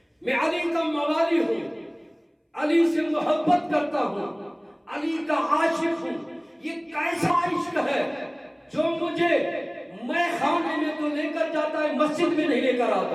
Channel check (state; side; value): identical; both; correlation 1.00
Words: میں علی کا موالی ہوں، علی سے محبت کرتا ہوں، علی کا عاشق ہوں. یہ کیسا عشق ہے جو مجھے میں خانے میں تو لے کر جاتا ہے، مسجد میں نہیں لے کر